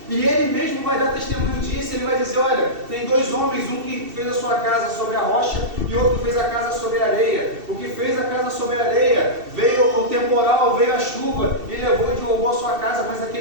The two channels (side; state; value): left; late; 2.7 ms